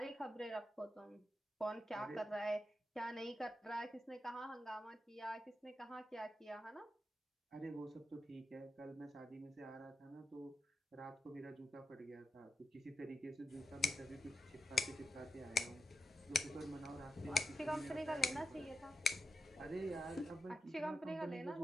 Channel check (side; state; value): both; normal; correlation 0.88